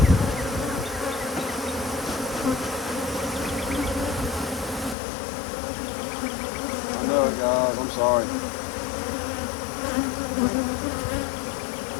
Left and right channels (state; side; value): drops out; right; at 5.0 s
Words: I know it, guys. I'm sorry.